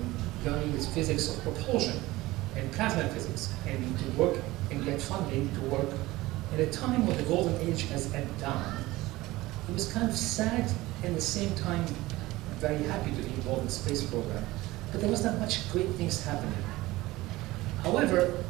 learning the physics of propulsion and plasma physics, and to work and get funding to work at a time when the golden age has ebbed down. It was kind of sad and at the same time very happy to be involved in the space program, but there was not much great things happening. However,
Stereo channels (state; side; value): quieter; left; 18.9 dB